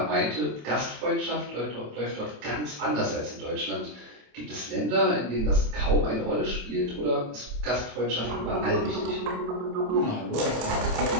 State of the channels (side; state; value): left; late; 27 ms